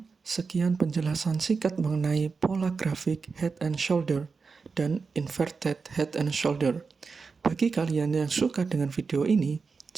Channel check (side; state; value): left; quieter; 4.8 dB